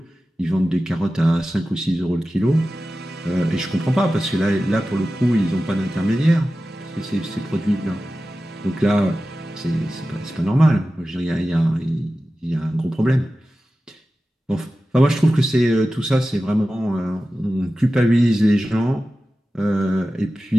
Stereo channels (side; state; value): both; normal; correlation 0.94